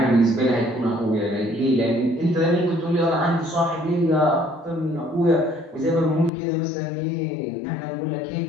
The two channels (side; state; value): right; drops out; at 6.3 s